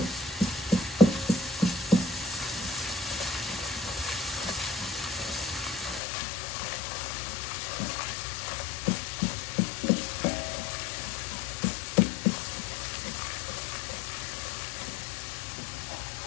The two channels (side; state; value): right; drops out; at 6.0 s